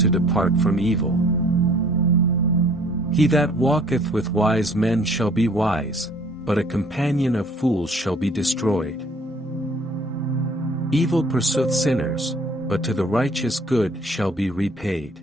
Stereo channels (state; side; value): normal; both; correlation 0.56